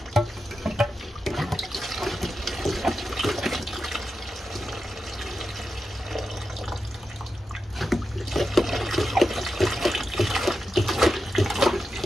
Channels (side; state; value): both; normal; correlation 0.89